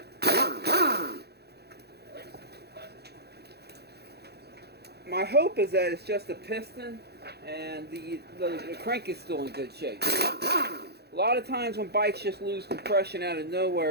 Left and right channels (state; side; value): late; left; 0.48 ms